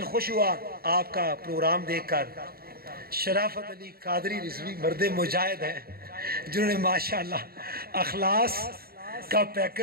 خوش ہوا آپ کا پروگرام دیکھ کر. شرافت علی قادری رضوی مرد مجاہد ہیں جنہوں نے ماشاءاللہ اخلاص کا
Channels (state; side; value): late; left; 0.44 ms